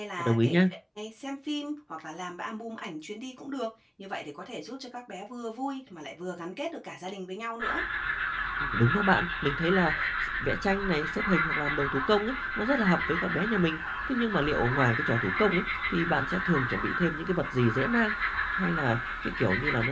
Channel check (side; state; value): both; identical; correlation 1.00